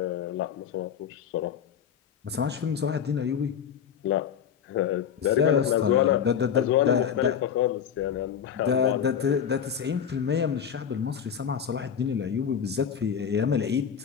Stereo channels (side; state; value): right; quieter; 8.1 dB